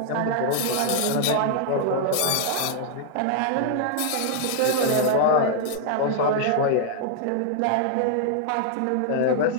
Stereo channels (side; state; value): both; different; correlation -0.01